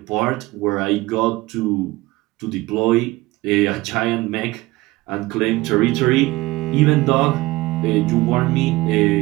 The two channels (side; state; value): left; quieter; 19.8 dB